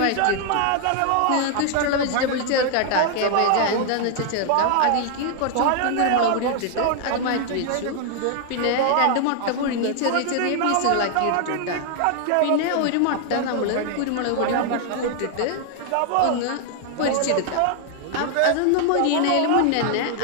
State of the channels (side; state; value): both; different; correlation 0.00